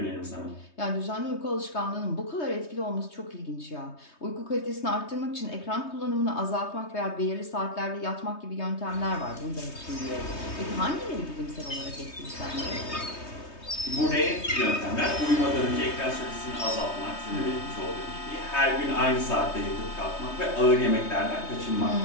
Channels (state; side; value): late; right; 3.2 ms